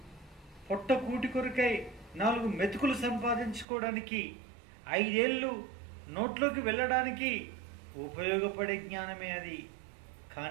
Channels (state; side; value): drops out; left; at 3.7 s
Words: పొట్ట కూటి కొరకై 4 మెతుకులు సంపాదించుకోవడానికి, 5 ఏళ్ళు నోట్లోకి వెళ్ళడానికి ఉపయోగపడే జ్ఞానమే అది.